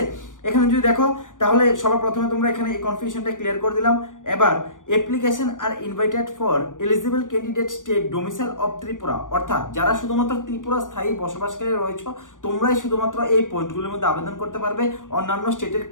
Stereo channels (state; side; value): late; right; 0.88 ms